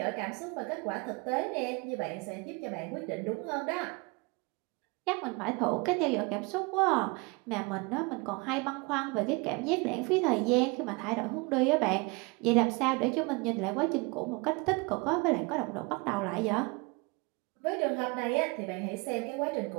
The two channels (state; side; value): quieter; left; 28.2 dB